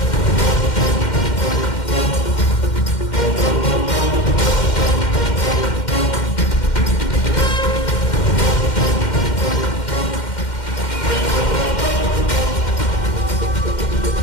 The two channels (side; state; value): right; late; 2.1 ms